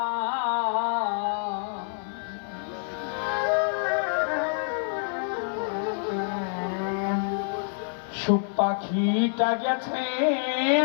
সুখ পাখিটা গেছে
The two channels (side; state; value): right; silent; 60 dB below the other